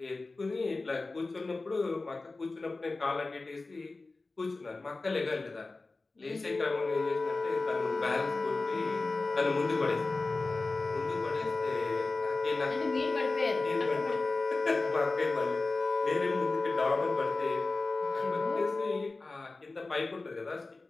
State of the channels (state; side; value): quieter; right; 3.5 dB